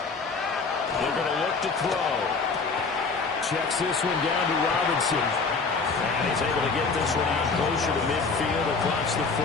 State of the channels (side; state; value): right; quieter; 4.5 dB